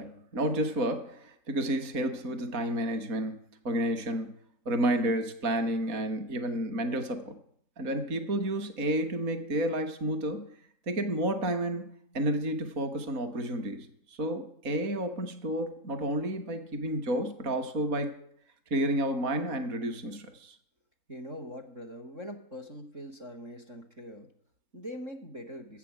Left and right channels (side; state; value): left; late; 4.1 ms